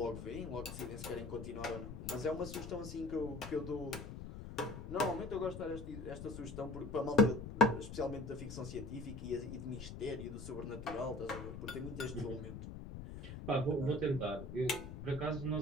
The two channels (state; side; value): noise; left; rumble, 9 dB below the sound